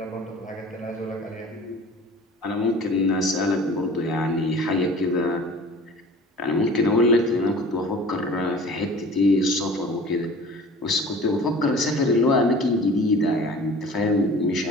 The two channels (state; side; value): normal; both; correlation 0.43